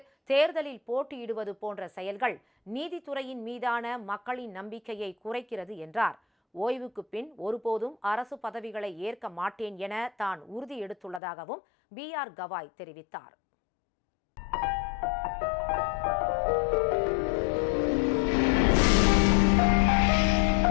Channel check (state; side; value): drops out; right; at 11.2 s